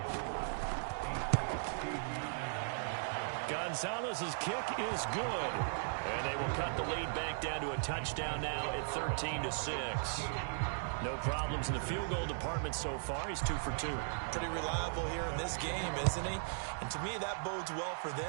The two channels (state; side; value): silent; left; digital silence